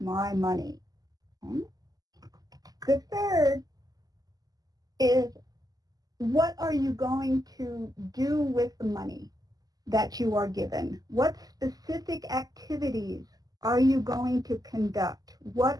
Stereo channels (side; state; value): left; late; 0.18 ms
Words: money? Okay? The third is, what are you going to do with the money that you are given? What specific activities are you going to conduct? What